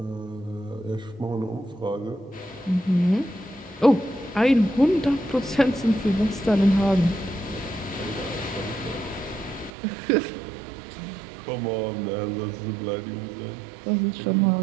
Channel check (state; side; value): drops out; left; at 9.7 s